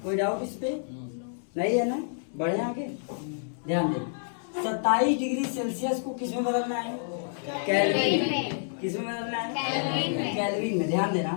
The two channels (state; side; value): silent; right; digital silence